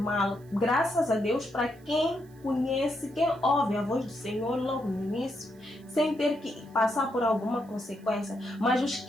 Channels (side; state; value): right; noise; hiss, 30 dB below the sound